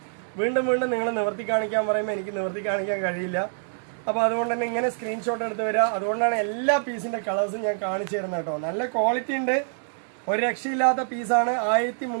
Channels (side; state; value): left; silent; digital silence